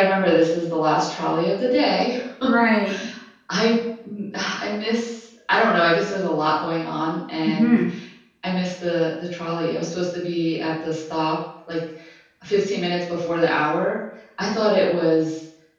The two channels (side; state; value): both; identical; correlation 1.00